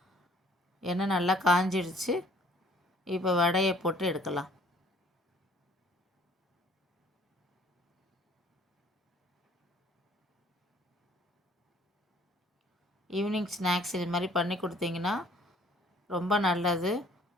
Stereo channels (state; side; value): normal; both; correlation 0.58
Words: எண்ணெய் நல்லா காஞ்சிடுச்சு. இப்போ வடையை போட்டு எடுக்கலாம். ஈவினிங் ஸ்நாக்ஸ் இது மாதிரி பண்ணி கொடுத்தீங்கன்னா ரொம்ப நல்லது.